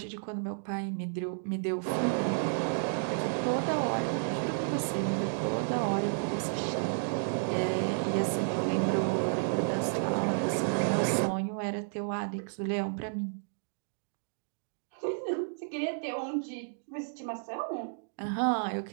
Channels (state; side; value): silent; left; digital silence